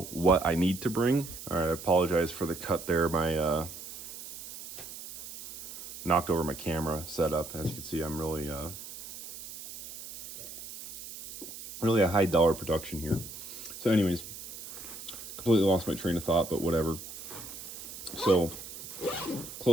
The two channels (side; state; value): right; noise; hiss, 12 dB below the sound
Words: what I need to bring. All right, I apologize for the cut there. My knocked over my camera setup. As you can see, I'm really a high dollar production here. So anyways, completely lost my train of thought, but whatever. So